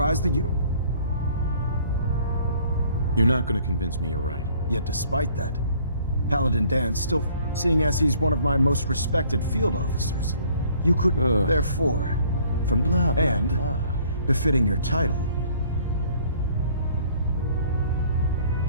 that you don't... You're not going to convince me you're right. Yet despite that, Paladin Dan's still seeing as he's one of my most respected field officers. You could, therefore, from blah, blah, and blah, befitting your title,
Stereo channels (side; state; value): both; inverted; correlation -0.58